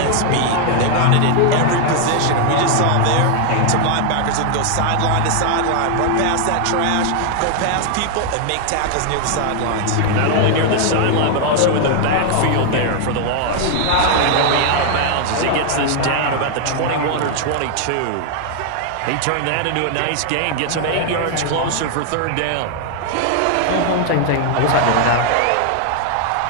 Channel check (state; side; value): different; both; correlation 0.00